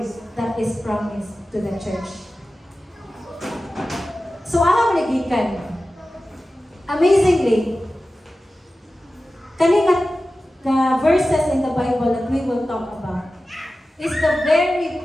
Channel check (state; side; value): normal; both; correlation 0.95